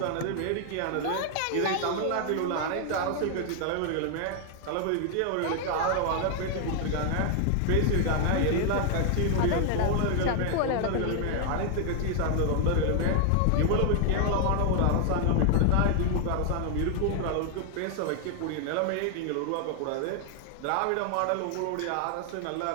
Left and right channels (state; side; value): different; both; correlation 0.00